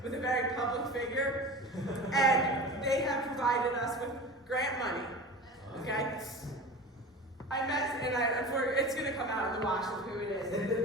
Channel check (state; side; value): normal; both; correlation 0.33